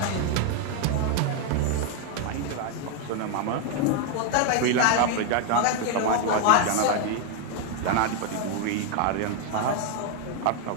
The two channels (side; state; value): both; different; correlation 0.01